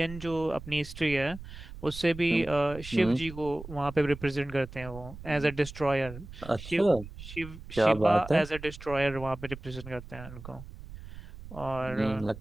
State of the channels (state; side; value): noise; right; rumble, 14 dB below the sound